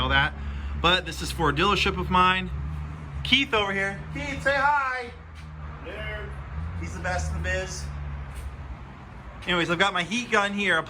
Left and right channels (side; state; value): both; identical; correlation 1.00